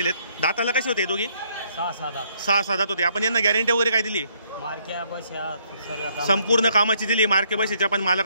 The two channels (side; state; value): both; inverted; correlation -0.69